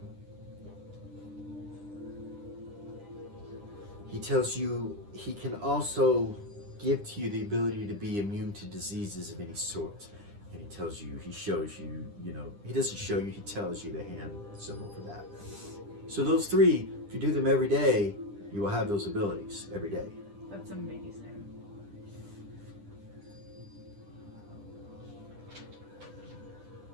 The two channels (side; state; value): left; late; 10 ms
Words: He tells you he can also give to you the ability to be immune to diseases of any sort. And he tells you, he shows you, you know, he doesn't show you, he tells you the hand symbol for that. So those 3, if you do them every day, you will have those abilities every day. That's amazing.